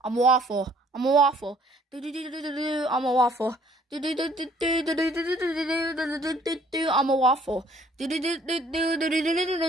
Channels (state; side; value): normal; both; correlation 0.60